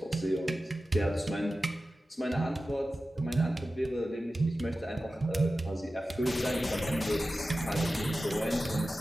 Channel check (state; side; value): normal; both; correlation 0.94